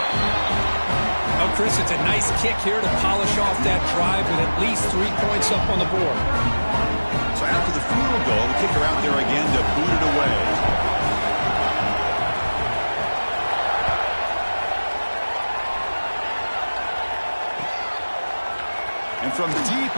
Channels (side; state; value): both; inverted; correlation -1.00